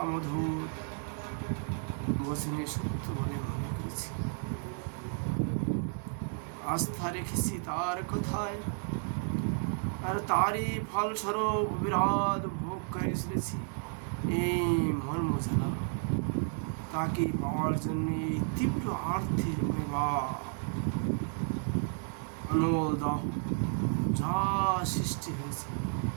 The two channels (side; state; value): left; silent; 56 dB below the other